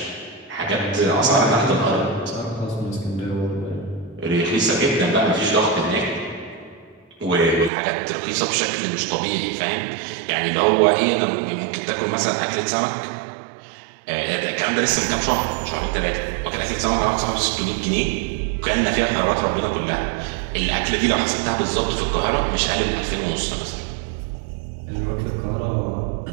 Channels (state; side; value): drops out; left; at 7.7 s